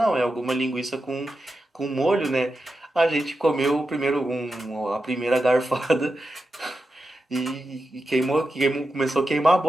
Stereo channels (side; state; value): both; normal; correlation 0.90